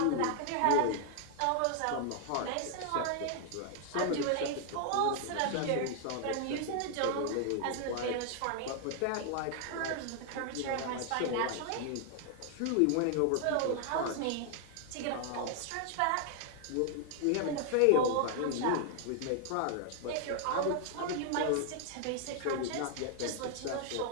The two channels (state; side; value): different; both; correlation 0.00